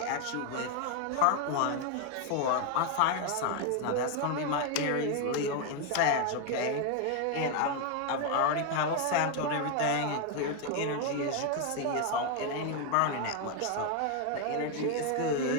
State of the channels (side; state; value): both; different; correlation 0.01